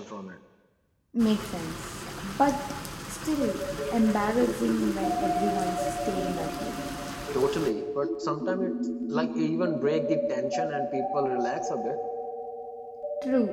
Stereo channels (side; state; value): both; identical; correlation 1.00